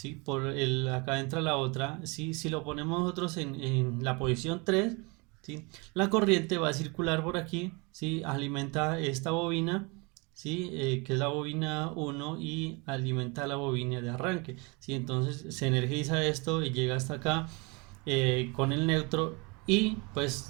Acá entra la otra, ¿sí? Si lo ponemos nosotros en la posición 3, ¿sí? La corriente va a circular por aquí, ¿sí? Alimenta esta bobina, ¿sí? Que es la bobina 1, y alimenta la bobina de arranque, ¿sí? Entonces se energiza esto y llega hasta acá con el neutro, y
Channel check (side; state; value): left; quieter; 29.2 dB